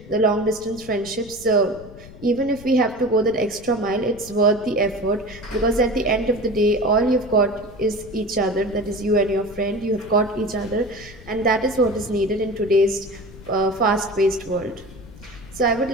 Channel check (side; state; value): left; noise; rumble, 18 dB below the sound